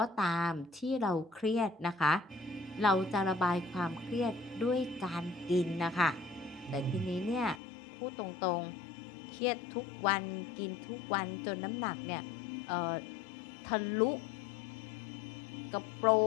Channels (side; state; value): right; drops out; at 7.6 s